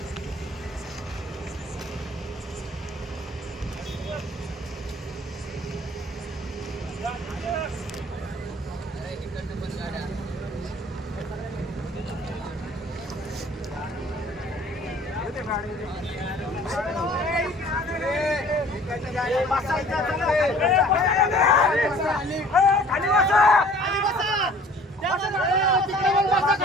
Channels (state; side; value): normal; both; correlation 0.51